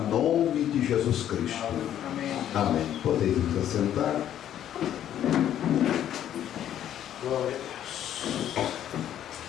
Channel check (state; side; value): quieter; right; 10.9 dB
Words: nome de Jesus Cristo. Amém. Podeis nos assentar. Glória a Deus.